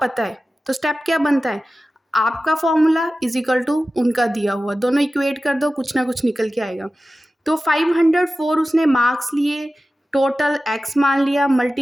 है, तो स्टेप क्या बनता है, आपका फॉर्मूला इज इक्वल टू उनका दिया हुआ, दोनों इक्वेट कर दो, कुछ ना कुछ निकल के आएगा। तो 504 उसने मार्क्स लिए, टोटल x मान लिया,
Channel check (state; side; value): normal; both; correlation 0.94